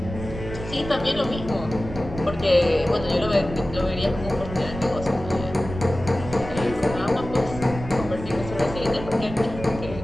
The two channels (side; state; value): right; noise; rumble, 10 dB below the sound